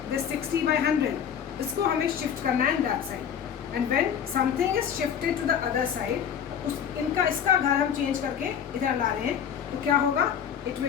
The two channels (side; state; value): right; quieter; 8.3 dB